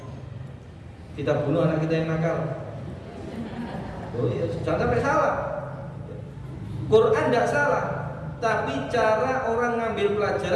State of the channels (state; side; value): identical; both; correlation 1.00